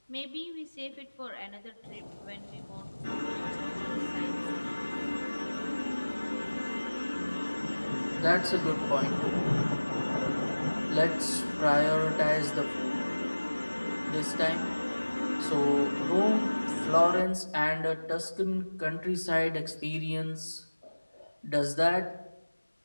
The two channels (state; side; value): inverted; both; correlation -1.00